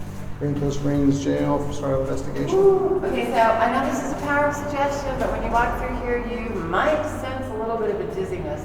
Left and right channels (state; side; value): identical; both; correlation 1.00